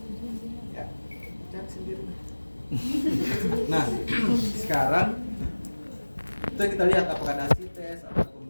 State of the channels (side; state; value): both; inverted; correlation -1.00